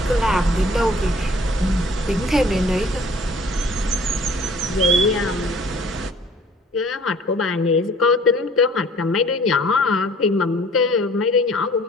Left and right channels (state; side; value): normal; both; correlation 0.53